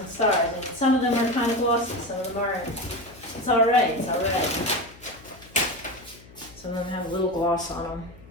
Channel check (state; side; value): noise; left; hum, 22 dB below the sound